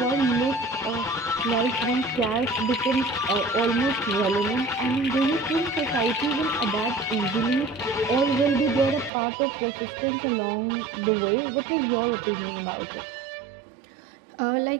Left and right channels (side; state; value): left; drops out; at 9.1 s